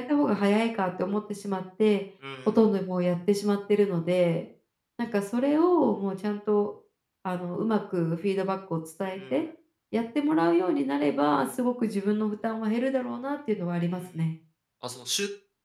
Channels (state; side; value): identical; both; correlation 1.00